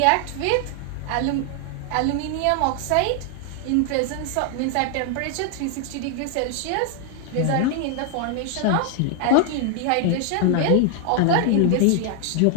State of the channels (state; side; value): different; both; correlation 0.00